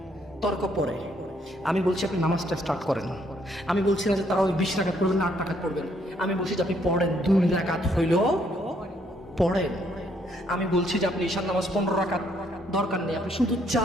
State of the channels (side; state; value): both; normal; correlation 0.69